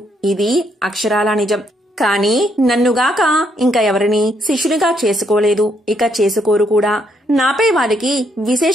ఇది అక్షరాలా నిజం. కాని నన్నుగాక ఇంకా ఎవరిని శిష్యునిగా చేసుకోలేదు, ఇక చేసుకోరు కూడా. నాపై వారికి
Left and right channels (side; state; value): both; normal; correlation 0.73